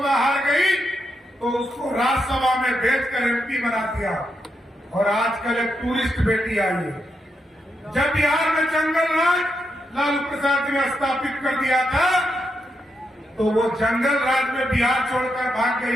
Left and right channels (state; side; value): normal; both; correlation 0.83